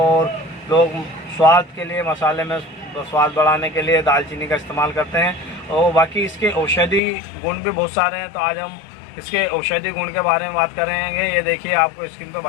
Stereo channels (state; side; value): drops out; right; at 7.0 s